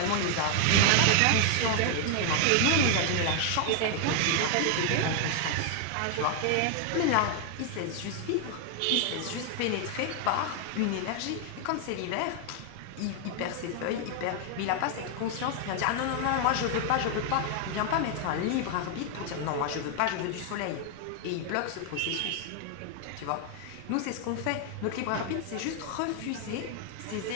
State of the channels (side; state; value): both; different; correlation 0.00